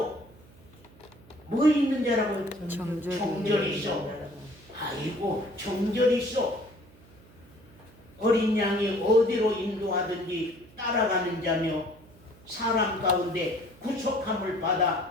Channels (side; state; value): right; noise; hum, 25 dB below the sound